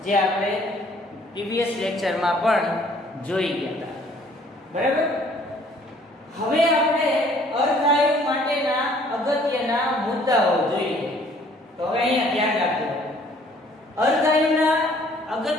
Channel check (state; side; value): normal; both; correlation 0.59